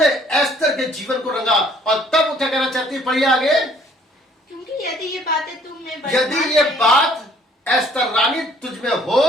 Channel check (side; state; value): both; normal; correlation 0.59